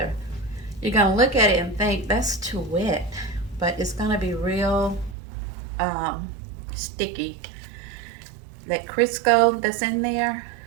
You're going to look at it and think that's too wet, but it's going to be real sticky. That Crisco that's in there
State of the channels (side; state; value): left; drops out; at 5.2 s